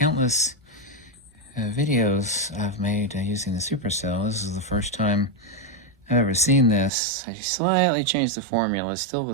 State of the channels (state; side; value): drops out; left; at 6.9 s